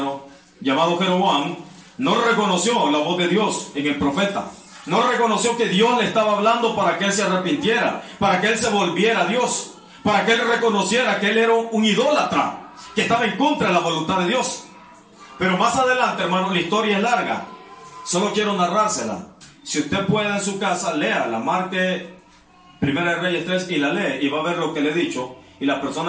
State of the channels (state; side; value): identical; both; correlation 1.00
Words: llamado Jeroboam, no reconoció la voz de Dios en el profeta. No reconoció que Dios le estaba hablando para que él se arrepintiera, para que él se volviera a Dios, para que él reconociera que él era un idólatra, que estaba en contra de la voluntad de Dios. Pero más adelante, hermano, la historia es larga. Solo quiero narrársela. Si usted puede en su casa, léala, marque Primera de Reyes 3 y la lee y va a ver lo que le he dicho. Y las